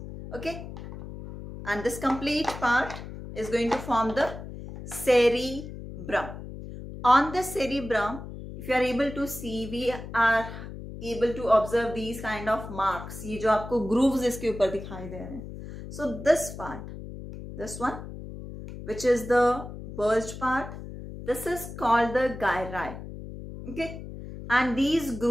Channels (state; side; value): noise; left; hum, 11 dB below the sound